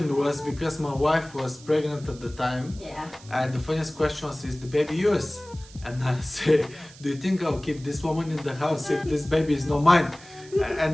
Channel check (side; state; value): right; noise; hiss, 21 dB below the sound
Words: was, because my wife was pregnant at the time. Yeah. And the funniest question was, is the baby yours? And I say, do you think I'll keep this woman in the house if this baby is not mine?